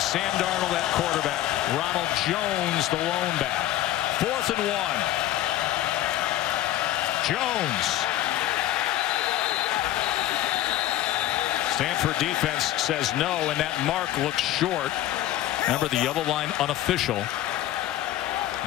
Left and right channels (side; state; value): right; quieter; 13.7 dB